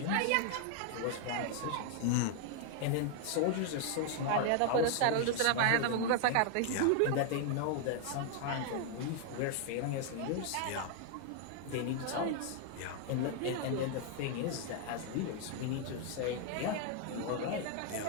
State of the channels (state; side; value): different; both; correlation 0.00